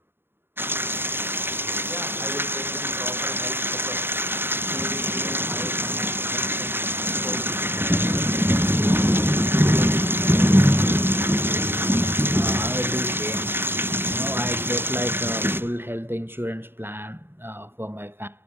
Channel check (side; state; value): left; late; 0.11 ms